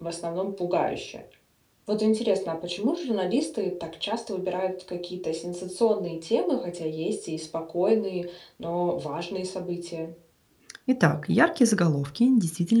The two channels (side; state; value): both; identical; correlation 1.00